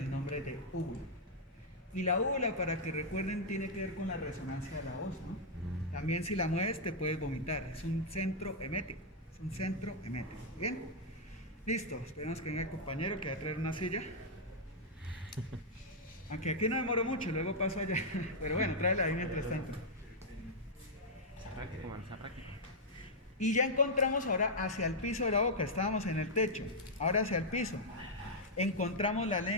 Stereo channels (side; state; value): both; normal; correlation -0.04